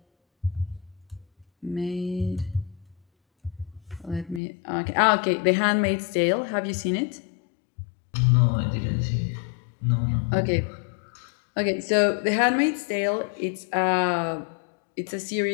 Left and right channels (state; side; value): drops out; right; at 4.4 s